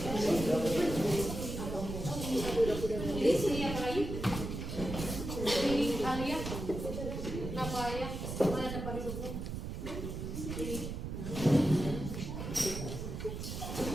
Jadi sini apa lagi? Ini Alia. Kenapa Alia? Mana tempat duduknya? Ini.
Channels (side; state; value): right; noise; rumble, 5 dB below the sound